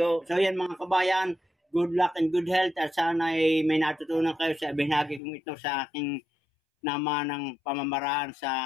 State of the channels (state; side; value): drops out; right; at 5.2 s